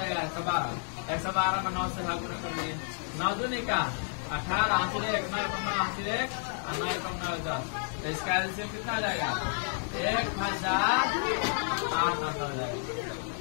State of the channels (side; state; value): right; silent; 57 dB below the other